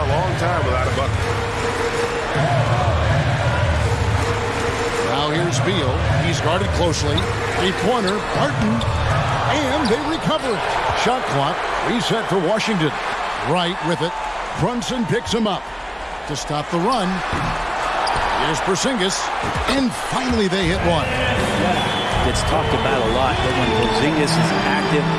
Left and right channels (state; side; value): identical; both; correlation 1.00